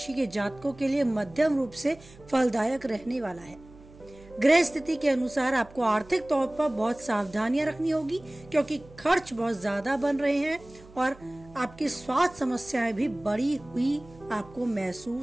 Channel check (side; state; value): right; noise; hum, 22 dB below the sound